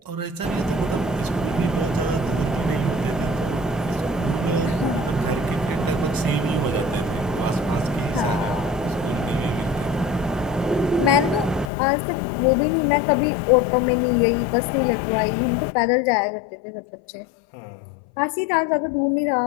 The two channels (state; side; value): drops out; right; at 11.7 s